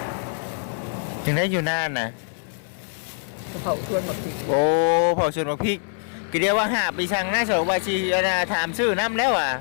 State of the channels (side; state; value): right; silent; 63 dB below the other